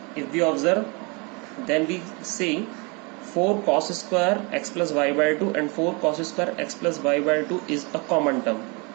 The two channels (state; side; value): quieter; left; 30.3 dB